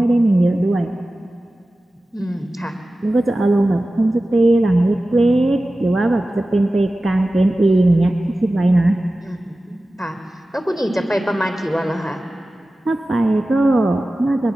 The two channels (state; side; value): normal; both; correlation 0.96